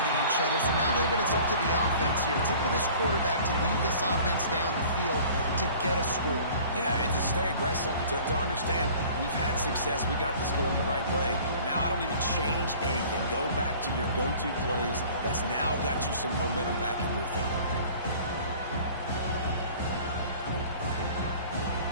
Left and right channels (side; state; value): both; inverted; correlation -0.47